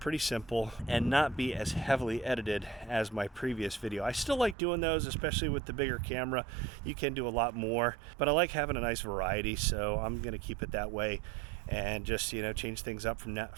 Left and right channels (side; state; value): left; drops out; at 4.5 s